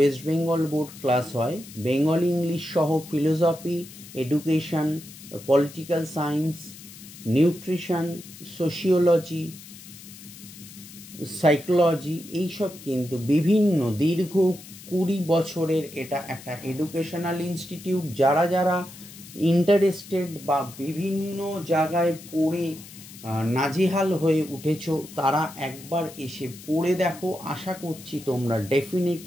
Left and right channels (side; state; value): left; noise; hiss, 17 dB below the sound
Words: Bengal board class হয়। বেঙ্গলি ইংলিশ সহ philosophy, education, political science, nutrition, sociology, psychology, এইসব কিন্তু বিভিন্ন দীর্ঘ 20 বছরের এটা একটা এডুকেশনাল ইনস্টিটিউট। যারা যারা ইন্টারেস্টেড বা বিভিন্ন জায়গায় পড়ে নাজেহাল হয়ে উঠেছো তারা একবার এসে পড়ে দেখো। আশা করছি তোমরা